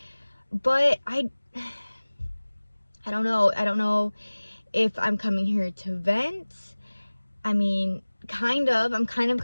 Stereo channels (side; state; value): both; inverted; correlation -1.00